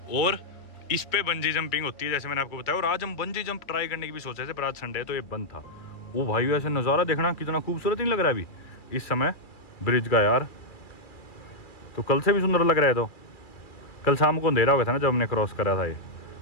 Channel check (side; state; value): right; late; 2.6 ms